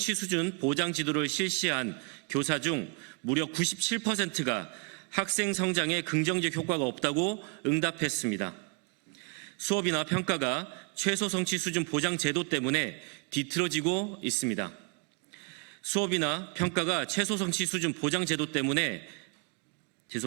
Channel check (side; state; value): left; quieter; 34.2 dB